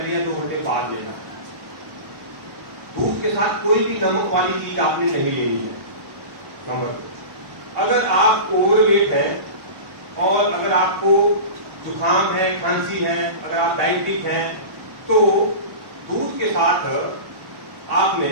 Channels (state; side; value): late; left; 1.1 ms